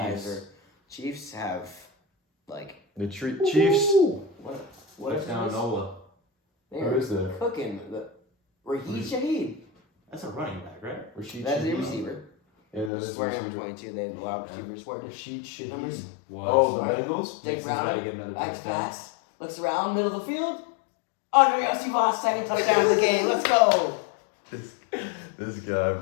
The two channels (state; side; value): drops out; right; at 12.9 s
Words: Chiefs. are Chiefs have like The Chiefs. what is Touchdown this? Nola. They Who are is that? cooking the Raheem Shaheed. That's a running back, right? Rashid That's the Shaheed. receiver. And then it's Swearing on receiver. 22, they allow receivers swearing. Rashid Shaheed. Numbers. Oh, the Right. Bengals? Jake Nixon's about to Brown, get another back to touchdown. pass, looks around, middle of the field. Andre Yosivas, second touchdown of the game. Let's go. This guy,